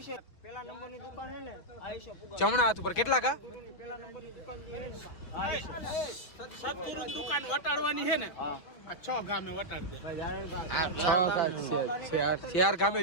પેલા નંબરની દુકાન હે ને આઈશો પુગા જમણા હાથ ઉપર કેટલા કા પેલા નંબરની દુકાન છે ને સતગુરુની દુકાન વટાડવાની છે ને આ 6 ગામે વટાડ દે ચાર ગામે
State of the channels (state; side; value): late; right; 5.7 ms